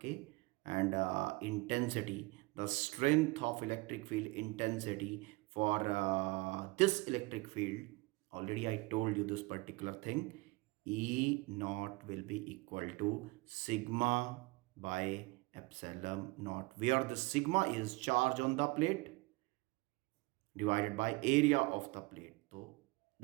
and intensity, the strength of electric field intensity for this electric field, already I told you this particular thing, E naught will be equal to sigma by epsilon naught, where the sigma is charge on the plate divided by area of the plate. So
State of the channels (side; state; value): left; quieter; 24.6 dB